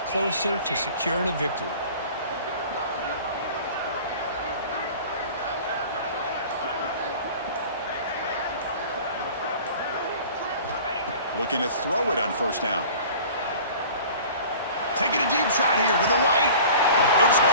closer to securing a victory. Looking to throw it on first down. Taking a deep shot here to the right. It's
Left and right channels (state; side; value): inverted; both; correlation -0.43